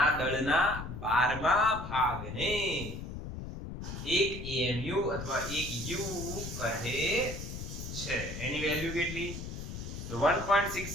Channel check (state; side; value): noise; left; rumble, 8 dB below the sound